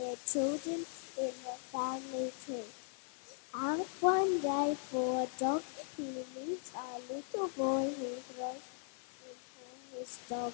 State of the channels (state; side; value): silent; right; 52 dB below the other